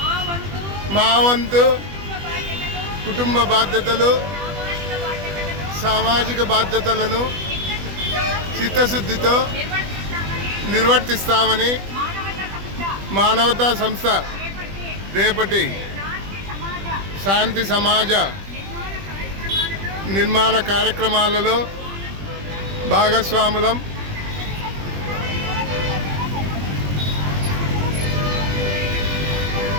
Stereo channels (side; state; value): left; late; 20 ms